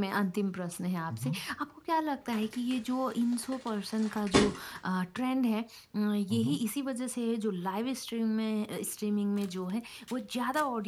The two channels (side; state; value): both; identical; correlation 1.00